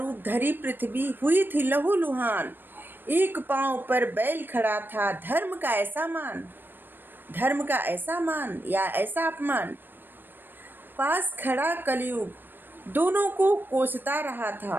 धरी पृथ्वी हुई थी लहूलुहान। एक पांव पर बैल खड़ा था, धर्म का ऐसा मान, धर्म का ऐसा मान या ऐसा अपमान। पास खड़ा कलयुग दोनों को कोसता रहा था।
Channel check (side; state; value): left; late; 0.095 ms